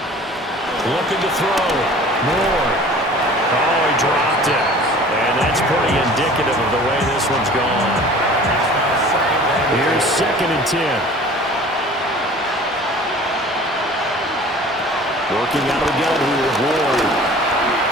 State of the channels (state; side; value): normal; both; correlation 0.45